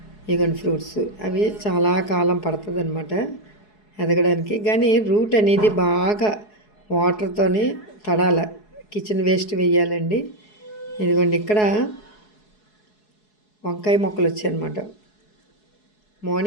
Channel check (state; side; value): late; right; 4.7 ms